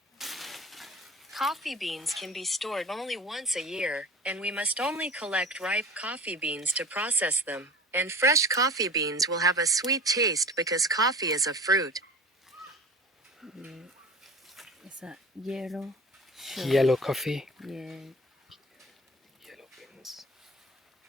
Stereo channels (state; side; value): normal; both; correlation 0.37